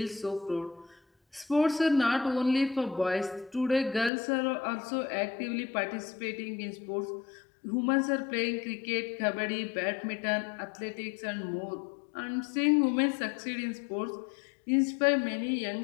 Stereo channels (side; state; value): right; drops out; at 4.1 s